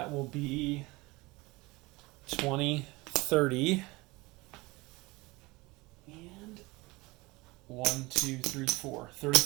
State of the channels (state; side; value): quieter; left; 22.8 dB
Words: will be 20, 30, and 1, 2, 3, 4.